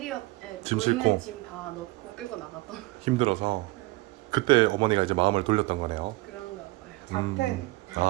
짐 있는 싣고? 짐 다 넣고 끌고 나갔던 힘들어서 그때 어머니가 이제 마음을 돌렸던 거네요. 그런가 봐요. 자퇴.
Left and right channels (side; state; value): left; quieter; 22.2 dB